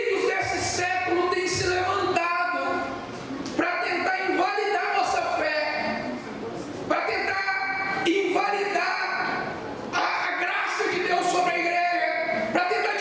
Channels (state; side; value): identical; both; correlation 1.00